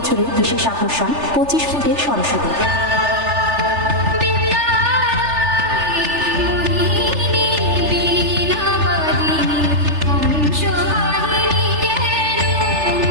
বিশেষ আকর্ষণ 25 ফুটের সরস্বতী।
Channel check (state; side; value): late; left; 3.3 ms